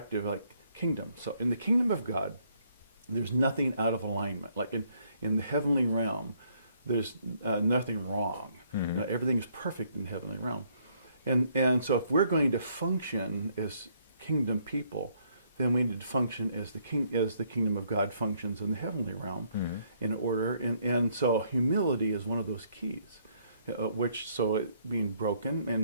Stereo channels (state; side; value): inverted; both; correlation -0.68